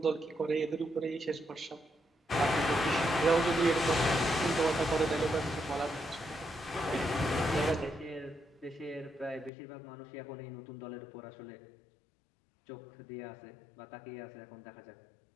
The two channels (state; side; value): drops out; right; at 9.5 s